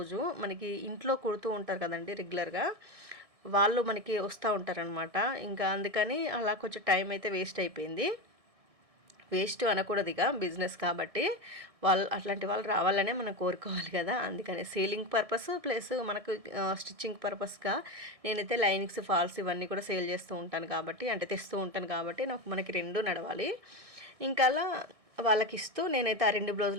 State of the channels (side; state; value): left; late; 1.6 ms